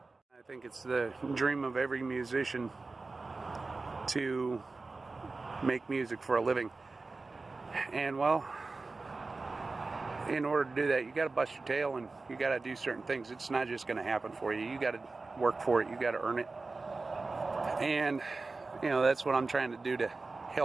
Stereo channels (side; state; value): left; quieter; 3.7 dB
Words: I think it's the dream of every musician to make music for a living. And, well, in order to do that, you got to bust your tail, and you got to do certain things. It's not just going to happen for you. You got to work for it. You got to earn it. And, that's what I'm trying to do to